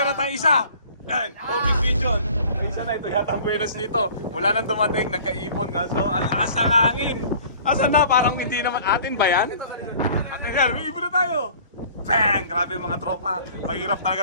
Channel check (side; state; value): both; inverted; correlation -0.49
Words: tayong isa. Yan, homing pigeon. Isa na ito yata ang buenas nito. Mula nang dumating, nagkaipon kaso ang lakas ng hangin. Asan na? Parang hindi naman atin ba yan? Atin yan, may ibon na tayo. Bang! Grabe mga tropa. Mahirap